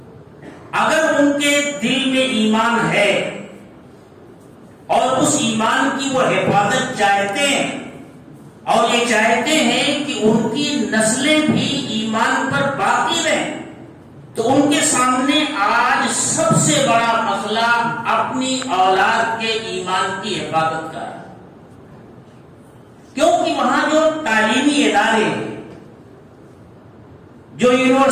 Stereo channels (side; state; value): both; identical; correlation 1.00